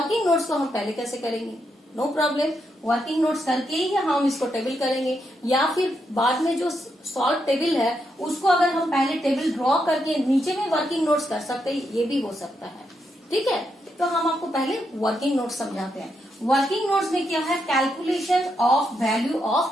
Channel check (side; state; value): both; normal; correlation 0.81